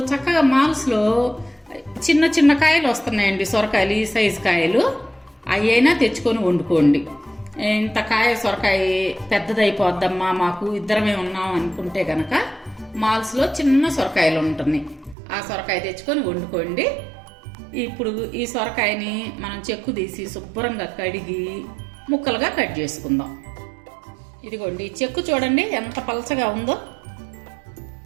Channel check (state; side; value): drops out; left; at 15.2 s